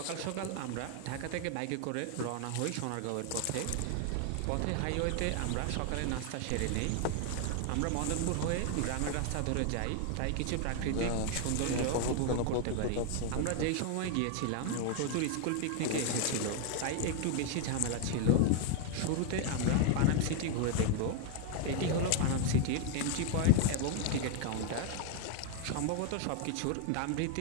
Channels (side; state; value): both; different; correlation 0.00